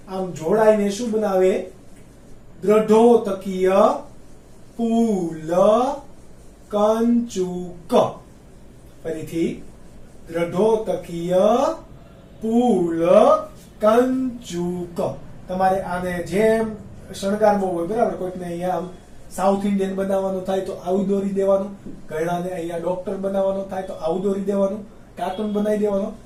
આમ જોડાઈને શું બનાવે? દ્રઢોતકીય પુલકંચુક. ફરીથી દ્રઢોતકીય પુલકંચુક. તમારે આને જેમ શણગારવો હોય બરાબર, કોઈકને અહીંયા આમ સાઉથ ઇન્ડિયન બનાવવાનું થાય તો આવું દોરી દેવાનું, ઘણાને અહીંયા ડોક્ટર બનાવવાનું થાય તો આવું દોરી દેવાનું, કાર્ટૂન બનાવી દેવાનું.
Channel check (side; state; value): both; identical; correlation 1.00